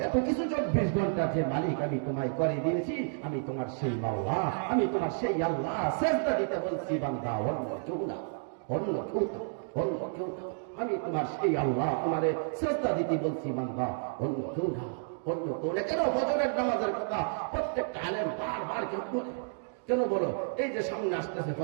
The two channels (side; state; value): left; silent; digital silence